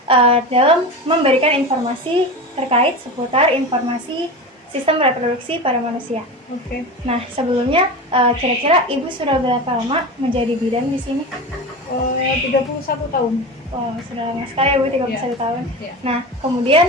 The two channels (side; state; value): both; normal; correlation 0.26